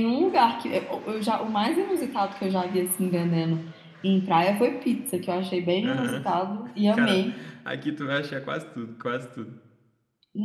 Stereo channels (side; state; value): both; identical; correlation 1.00